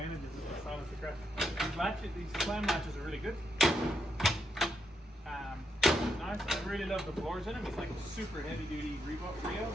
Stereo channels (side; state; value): both; normal; correlation 0.79